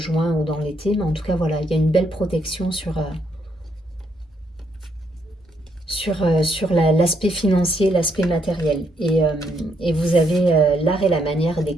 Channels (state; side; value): normal; both; correlation 0.75